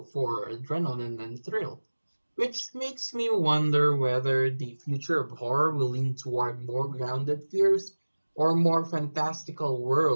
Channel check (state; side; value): inverted; both; correlation -1.00